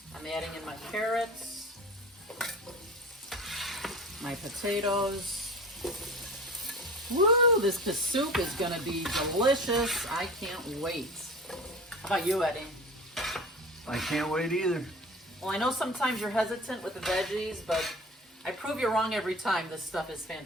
I'm adding in my carrots, my potatoes. Woo, this soup is gonna be delicious. I can't wait. How about you, Eddie? I can't wait either. Well, I know sometimes you're hesitant with the veggies, but I prove you wrong every time. This stuff is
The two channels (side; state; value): both; normal; correlation 0.37